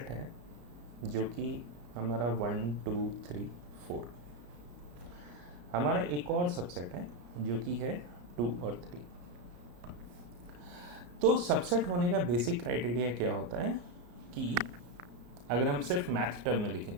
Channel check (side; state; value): left; late; 34 ms